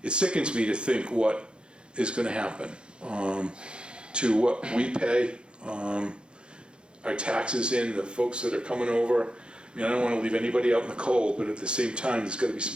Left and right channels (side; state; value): left; late; 0.053 ms